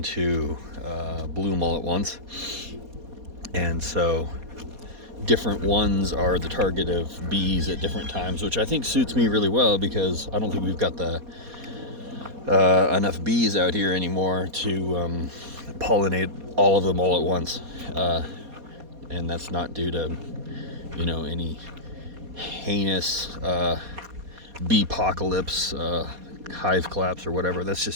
to bloom all at once, and so different ones are the target of bees at different times, which I think suits me really well because I don't think we've got the enough bees out here anymore to pollinate all of them all at once, and that's not due to any heinous bee apocalypse, hive collapse or whatever. That's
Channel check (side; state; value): left; late; 4.2 ms